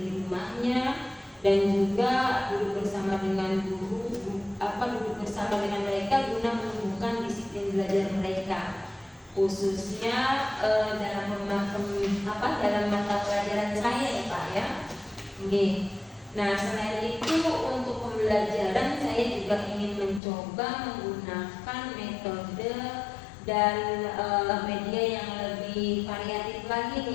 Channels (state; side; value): drops out; right; at 20.2 s